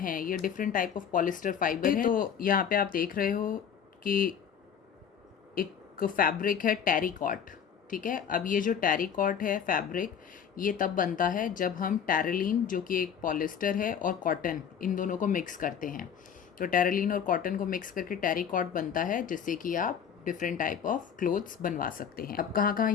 ये different type of polyester fibre है। तो यहाँ पे आप देख रहे हो कि एक फैब्रिक है टेरिकॉट, ठीक है। अब ये जो टेरिकॉट है फैब्रिक, ये तब बनता है जब हम टेरेलिन, जो कि एक पॉलिस्टर है, और कॉटन, इन दोनों को मिक्स करते हैं। तो टेरेलिन और कॉटन को मिक्स करके टेरिकॉट बनता है, जिससे कि आप डिफरेंट टाइप ऑफ क्लोथ्स बनवा सकते हैं। अब कहाँ कहाँ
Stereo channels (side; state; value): right; quieter; 7.9 dB